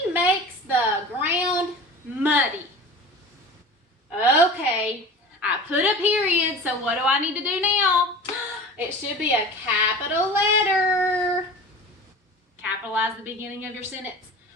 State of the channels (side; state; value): both; normal; correlation 0.36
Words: makes the ground muddy. Okay, I put a period, so what do I need to do now? It should be a capital letter. Capitalize the beginning of your sentence.